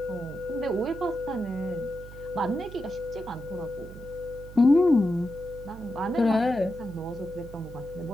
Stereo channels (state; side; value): noise; right; hum, 15 dB below the sound